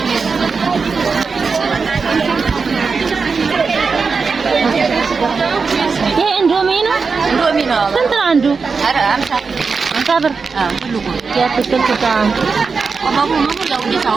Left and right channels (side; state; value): left; quieter; 4.9 dB